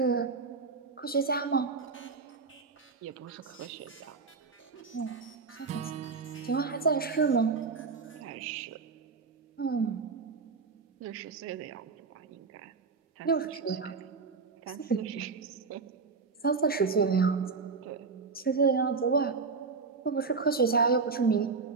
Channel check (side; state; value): left; quieter; 4.7 dB